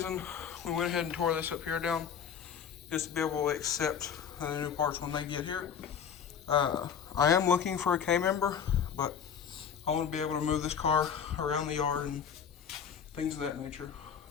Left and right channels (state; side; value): quieter; right; 7.7 dB